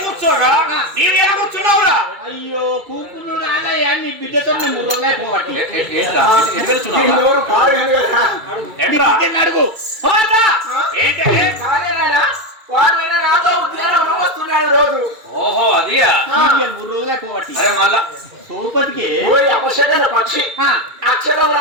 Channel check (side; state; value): left; late; 2.6 ms